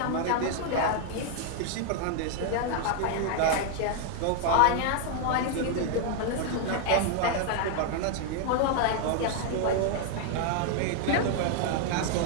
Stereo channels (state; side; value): different; both; correlation 0.00